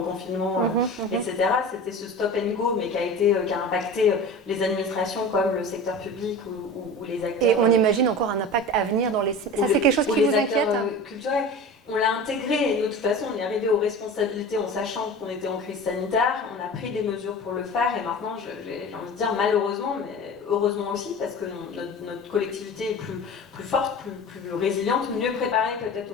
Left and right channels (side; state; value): both; normal; correlation 0.34